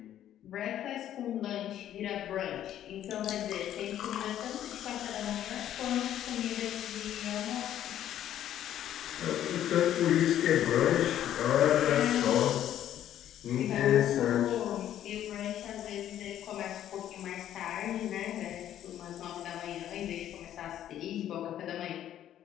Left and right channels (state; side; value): quieter; right; 11.4 dB